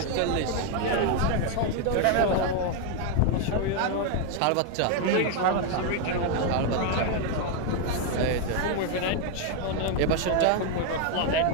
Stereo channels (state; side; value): different; both; correlation 0.01